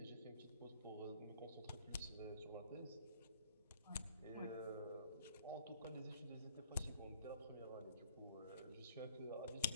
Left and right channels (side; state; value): both; inverted; correlation -0.59